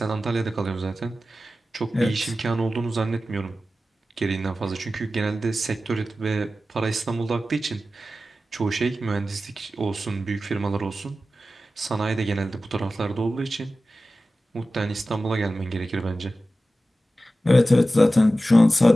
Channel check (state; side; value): normal; both; correlation 0.94